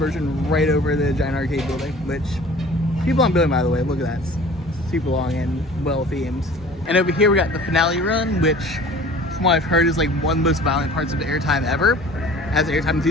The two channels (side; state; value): both; normal; correlation 0.46